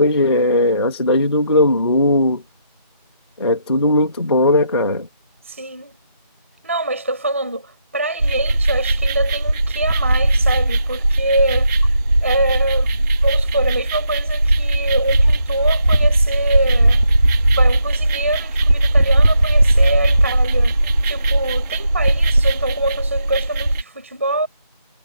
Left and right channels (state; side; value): inverted; both; correlation -0.79